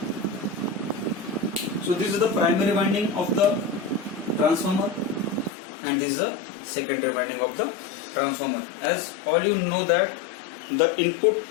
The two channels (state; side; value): drops out; right; at 5.5 s